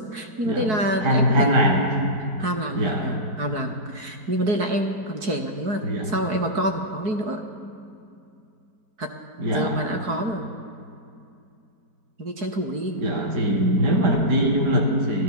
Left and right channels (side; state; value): left; late; 4.7 ms